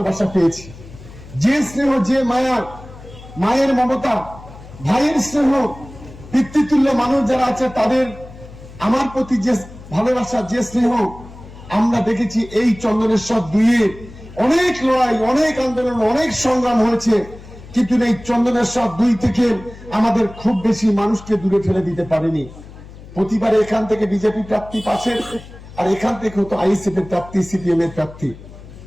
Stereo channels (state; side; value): noise; left; hum, 17 dB below the sound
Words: পেয়েছি, যে স্নেহ, যে মায়া, মায়ের মমতা, ভাইয়ের স্নেহ, পিতৃতুল্য মানুষ যারা আছে তাদের আমার প্রতি যে ভালোবাসা, যে স্নেহ আমরা দেখেছি, এই চন্দনেশ্বর 2-এ অনেক লড়াই, অনেক আন্দোলন, অনেক সংগ্রাম হয়েছে, কিন্তু এই চন্দনেশ্বর 2 থেকে আমাদের খুব বেশি মানুষকে দূরে ফেলে দিতে পারেনি। প্রতিবারে এখান থেকে বিজেপি প্রার্থী পাশের, আর এখান থেকে হতো আইএসএফ এর প্রার্থী, সিপিএম এর প্রার্থী।